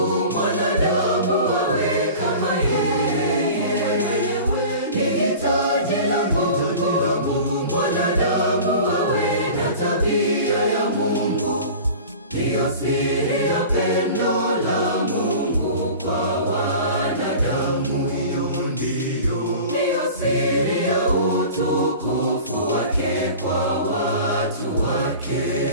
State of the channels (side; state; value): both; inverted; correlation -0.39